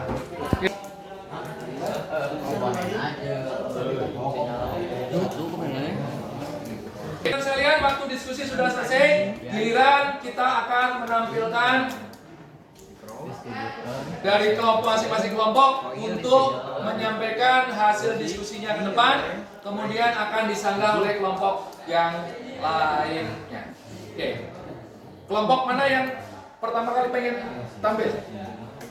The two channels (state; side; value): identical; both; correlation 1.00